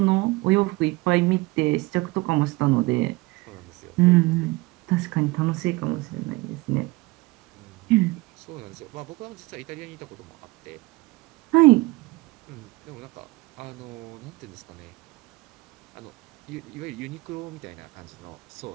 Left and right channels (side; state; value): left; quieter; 22.5 dB